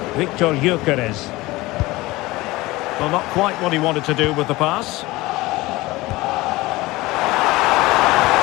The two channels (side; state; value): right; quieter; 20.0 dB